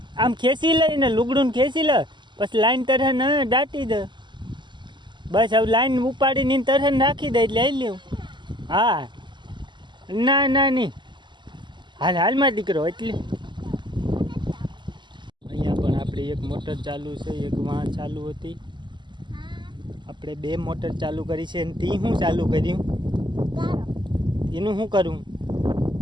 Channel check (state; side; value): late; left; 0.22 ms